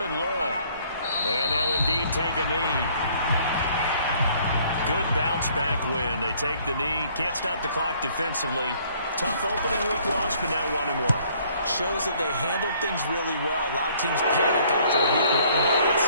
and long. And they'll indeed take a knee. Good bounce back win. They take the knee. Can't stop the clock defensively. Tough opening week loss, but now 1-1. Shows that they handled things really well. A lot of teams panic after a week 1 loss,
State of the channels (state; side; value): inverted; both; correlation -0.61